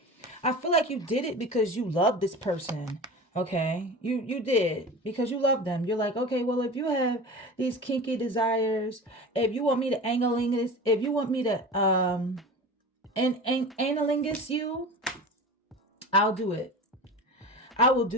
I feel like you did it because you love this person. Okay, you did because you love them. You're like, okay, well, if you have these kinky desires, if you want me to analingus, if you want me to analingus you, I'll do it. I will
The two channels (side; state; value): both; normal; correlation 0.33